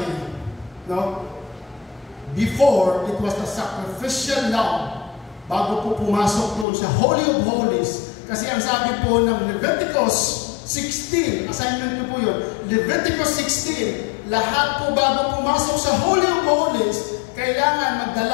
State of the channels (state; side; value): drops out; right; at 6.7 s